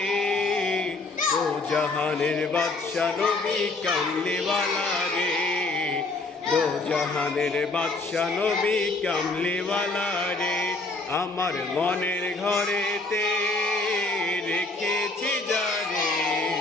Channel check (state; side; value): quieter; right; 3.3 dB